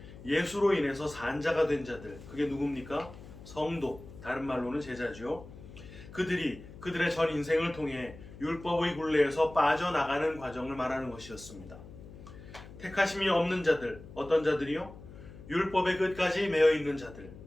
예수로 인해서 산자가 된 자들, 그게 누굽니까? 성도, 다른 말로는 제자죠. 그들이 그들의 전 인생을 통해 율법의 굴레에서 빠져나가는 과정을 말하는 것이었습니다. 택하심이 없는 자들, 어떤 자들이요? 율법의 끝까지 매여 있는 자들.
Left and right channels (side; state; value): left; noise; hum, 16 dB below the sound